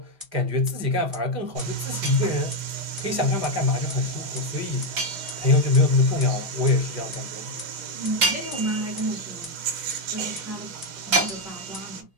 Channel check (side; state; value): left; late; 5.7 ms